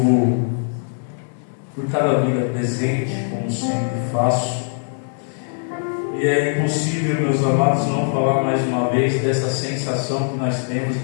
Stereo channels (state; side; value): silent; right; 63 dB below the other